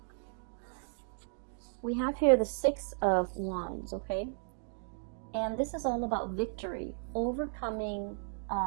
We have here the Six of Wands, okay? And this is all about victory, overcoming,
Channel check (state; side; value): silent; left; digital silence